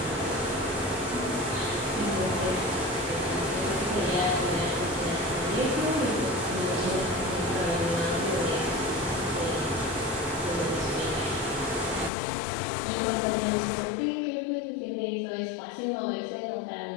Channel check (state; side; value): drops out; right; at 12.1 s